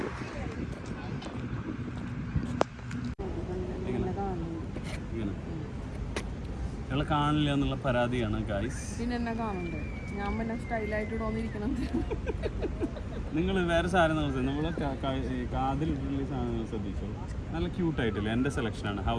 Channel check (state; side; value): identical; both; correlation 1.00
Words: കാണില്ല എന്നുള്ള പരാതിയാണ് ഗൈസ്. പിന്നെ എന്നെ കാണണ്ടേ? ഞാൻ പിന്നെ സ്റ്റൈലായിട്ട് തോന്നിയിരിക്കണം. നിങ്ങൾ വേറെ സാധനം നമ്മളെ കാതിലിട്ടുള്ള സാധനങ്ങൾ ശ്രദ്ധിച്ചോ. നല്ല ക്യൂട്ടായിട്ടില്ല. എൻ്റെ സെലക്ഷനാണ്. How